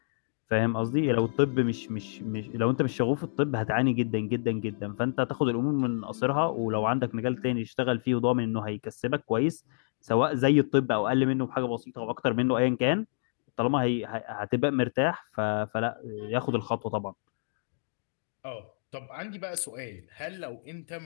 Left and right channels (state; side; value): silent; right; digital silence